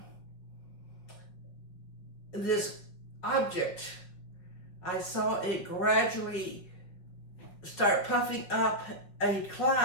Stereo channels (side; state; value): right; late; 5.5 ms